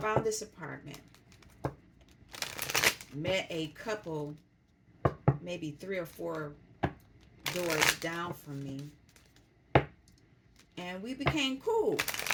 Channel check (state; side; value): identical; both; correlation 1.00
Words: this apartment, met a couple, maybe 3 or 4 doors down from me, and we became cool.